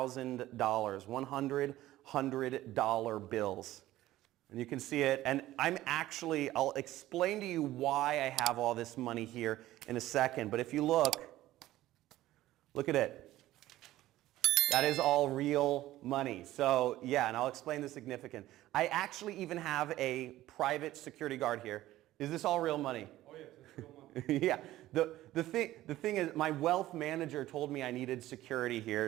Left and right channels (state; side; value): quieter; left; 15.3 dB